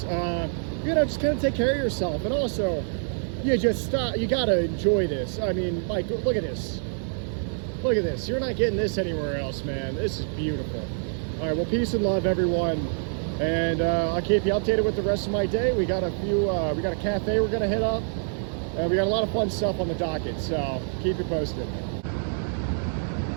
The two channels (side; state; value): left; silent; digital silence